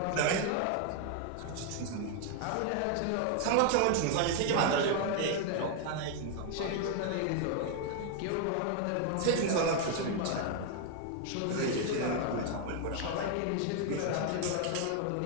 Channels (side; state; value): both; different; correlation 0.00